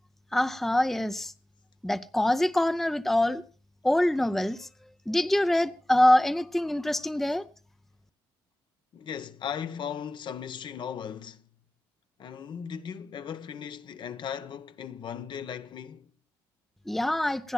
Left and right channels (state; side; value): normal; both; correlation 0.96